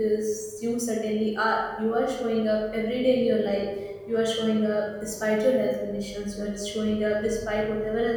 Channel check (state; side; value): identical; both; correlation 1.00